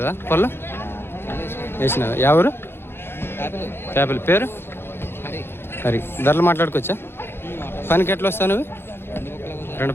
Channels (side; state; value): right; late; 0.11 ms